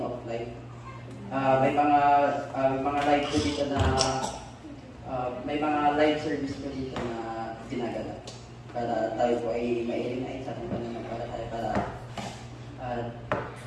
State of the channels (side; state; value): both; identical; correlation 1.00